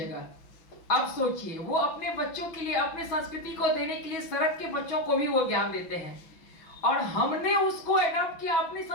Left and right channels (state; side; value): late; right; 6.0 ms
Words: अब सोचिए, वो अपने बच्चों के लिए, अपने संस्कृति को देने के लिए सड़क के बच्चों को भी वो ज्ञान देते हैं, और हमने उसको एडॉप्ट किया अपनी